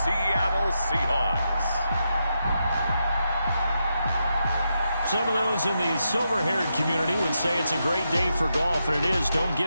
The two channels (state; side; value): inverted; both; correlation -0.85